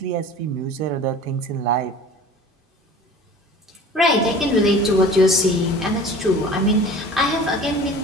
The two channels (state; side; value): normal; both; correlation 0.42